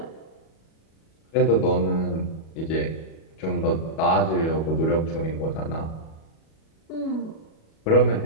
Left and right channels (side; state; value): right; late; 37 ms